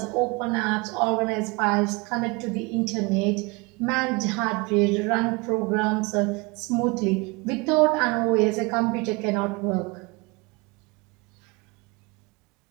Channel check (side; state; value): left; quieter; 26.3 dB